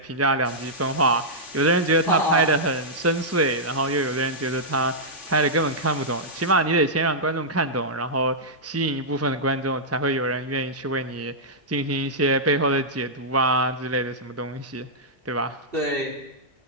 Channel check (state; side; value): normal; both; correlation -0.11